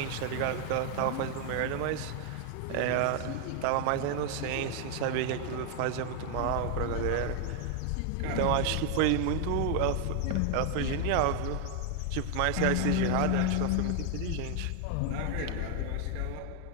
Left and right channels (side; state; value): both; different; correlation 0.01